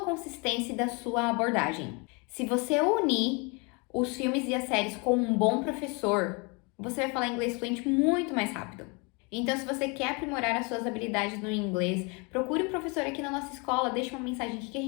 e da sua abordagem. Se você unir os filmes e as séries com um bom professor, você vai falar inglês fluente muito mais rápido. Então, se você quer aprimorar as suas habilidades no inglês, procure um professor aqui na nossa escola, deixe uma mensagem aqui que a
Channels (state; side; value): quieter; right; 30.9 dB